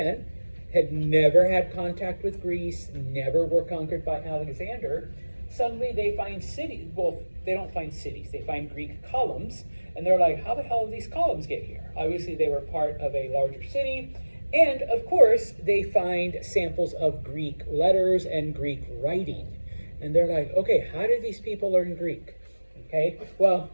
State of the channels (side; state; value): both; inverted; correlation -1.00